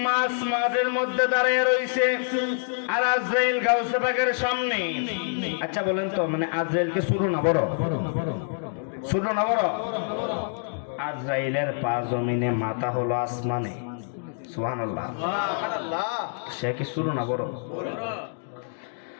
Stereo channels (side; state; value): right; silent; digital silence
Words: মাঝের মধ্যে দাঁড়িয়ে রইছে, আর আজরাইল গাউসে পাকের সামনে। আচ্ছা বলেন তো, মানে আজরাইল কে ছোট না বড়? ছোট না বড়? আজরাইলের পা জমিনে, মাথা হলো আসমানে। সুবহানাল্লাহ। সে কি শুরু না বড়?